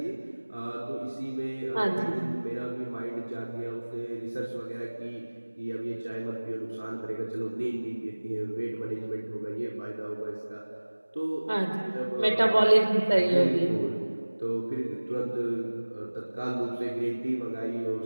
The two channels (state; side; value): inverted; both; correlation -1.00